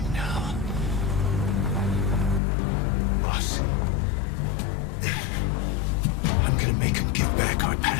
now? Boss, I'm gonna make him give back our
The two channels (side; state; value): right; drops out; at 2.4 s